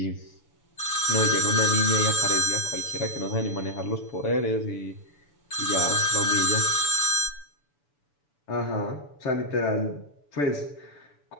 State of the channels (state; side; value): late; right; 6.9 ms